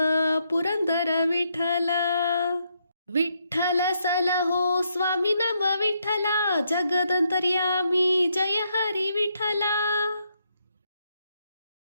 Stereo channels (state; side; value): inverted; both; correlation -0.77